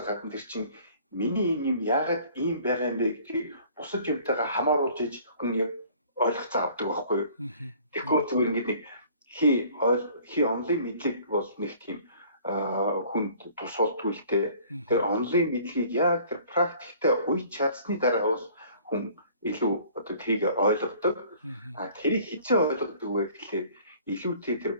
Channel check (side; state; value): both; inverted; correlation -0.53